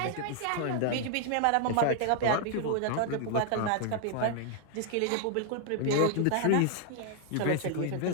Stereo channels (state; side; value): different; both; correlation 0.00